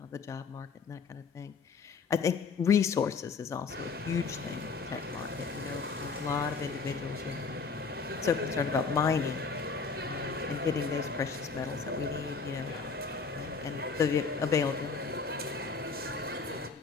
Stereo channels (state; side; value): quieter; right; 5.1 dB